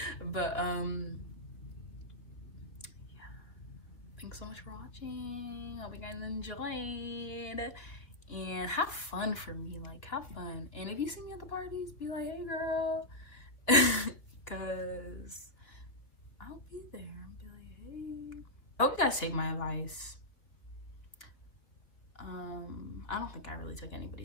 But yeah. Thanks so much for watching. Hope you guys enjoyed. And have fun for me. Like, have fun. And if you see me at the parties, be like, hey girl. Cause I'll be there. I'll be like, hey. I hope you guys take my advice. I don't think I really took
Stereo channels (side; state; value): right; late; 2.9 ms